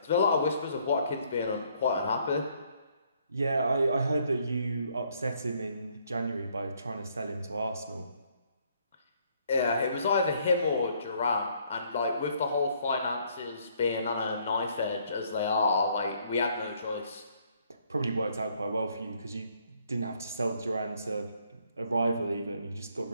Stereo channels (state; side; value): inverted; both; correlation -0.67